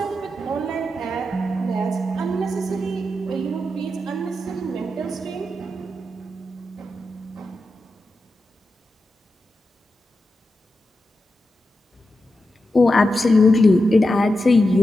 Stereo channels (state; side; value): normal; both; correlation 0.89